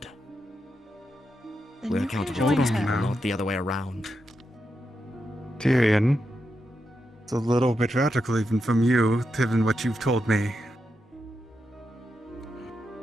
Then We're you can accountable for join these her. people, not the other way around. Tyrion, it's a little bit radical even from you, given what you've told me.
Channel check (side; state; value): both; normal; correlation 0.86